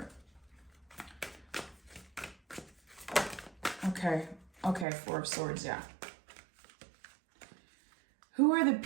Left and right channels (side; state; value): left; drops out; at 4.9 s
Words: Okay, Four of Swords, yeah. Who are the